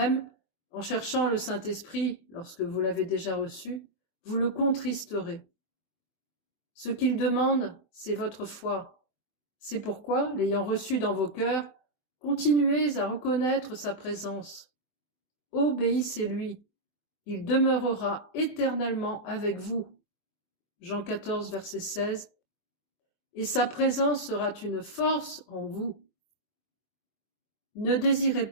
en cherchant le Saint-Esprit lorsque vous l'avez déjà reçu, vous le contristerez. Ce qu'il demande, c'est votre foi. C'est pourquoi, l'ayant reçu dans vos cœurs, continuez à reconnaître sa présence. Obéissez-lui. Il demeurera éternellement avec vous. Jean 14, verset 16. Et sa présence sera une force en vous. Ne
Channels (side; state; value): right; late; 24 ms